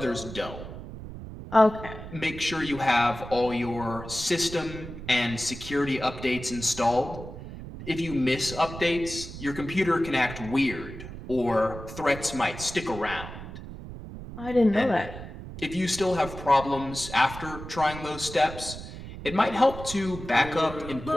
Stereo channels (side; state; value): right; noise; rumble, 11 dB below the sound